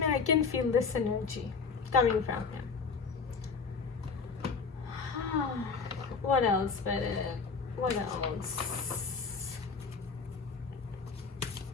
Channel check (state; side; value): quieter; right; 5.1 dB